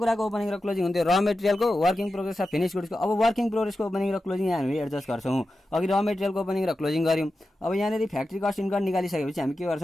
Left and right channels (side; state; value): both; normal; correlation 0.92